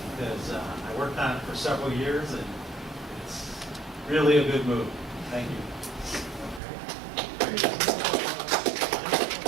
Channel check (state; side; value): drops out; left; at 6.6 s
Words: because I worked on it for several years, and it's really a good move. Thank you.